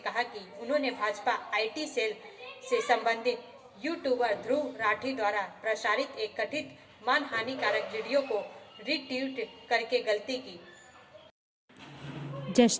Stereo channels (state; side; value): identical; both; correlation 1.00